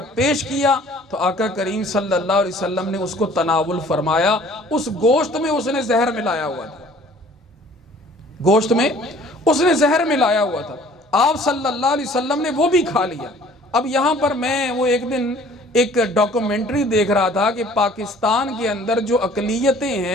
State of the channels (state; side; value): normal; both; correlation 0.53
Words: پیش کیا تو آقا کریم صلی اللہ علیہ وسلم نے اس کو تناول فرمایا۔ اس گوشت میں اس نے زہر ملایا ہوا تھا، گوشت میں اس نے زہر ملایا ہوا تھا، آپ صلی اللہ علیہ وسلم نے وہ بھی کھا لیا۔ اب یہاں پر میں وہ ایک دن ایک ڈاکومنٹری دیکھ رہا تھا کہ پاکستان کے اندر جو اقلیتیں